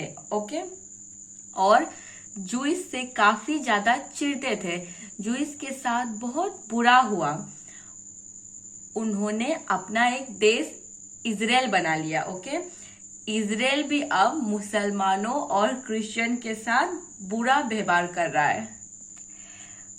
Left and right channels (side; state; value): both; identical; correlation 1.00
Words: ओके, और जूइस से काफी ज्यादा चिढ़ते थे। जूइस के साथ बहुत बुरा हुआ। उन्होंने अपना एक देश इजराइल बना लिया। ओके, इजराइल भी अब मुसलमानों और क्रिश्चियन के साथ बुरा व्यवहार कर रहा है।